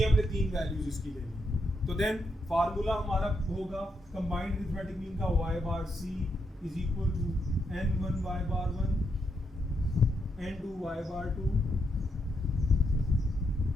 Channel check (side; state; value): both; normal; correlation 0.80